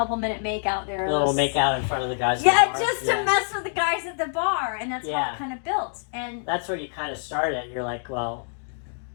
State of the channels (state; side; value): silent; right; digital silence